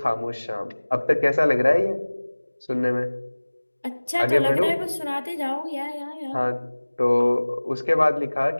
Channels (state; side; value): inverted; both; correlation -1.00